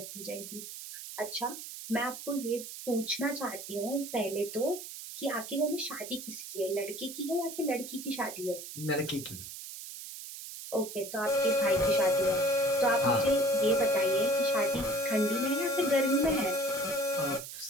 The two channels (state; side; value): noise; right; hiss, 11 dB below the sound